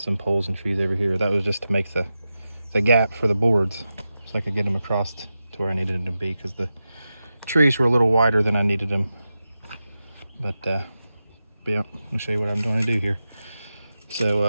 poles and trees over here. That was just to make the gap for the boards so I could get them across to where I needed them to be, because the trees were a little wider than I needed them. But yeah, I'll show you what I'm going to do here.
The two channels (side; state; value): both; inverted; correlation -0.92